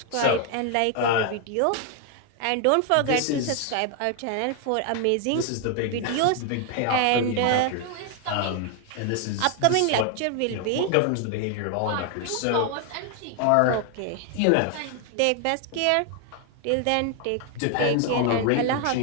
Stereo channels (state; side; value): different; both; correlation 0.00